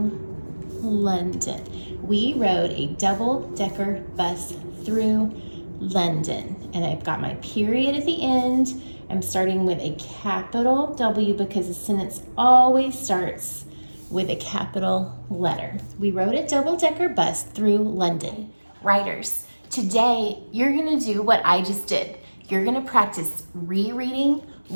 We rode a double-decker bus through London. And I've got my period at the end. I'm starting with a capital W because the sentence always starts with a capital letter. We rode a double-decker bus through London. Writers, today you're gonna do what I just did. You're gonna practice rereading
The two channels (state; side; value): inverted; both; correlation -1.00